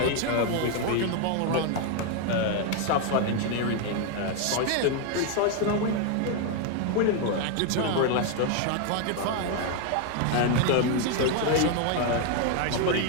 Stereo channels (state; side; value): different; both; correlation 0.01